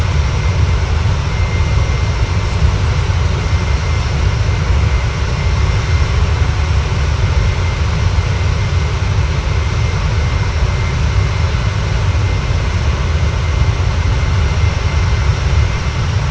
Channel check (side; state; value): both; identical; correlation 1.00